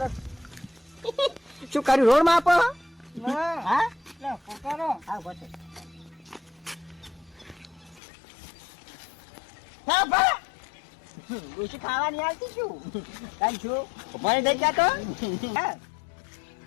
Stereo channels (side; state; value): right; drops out; at 8.0 s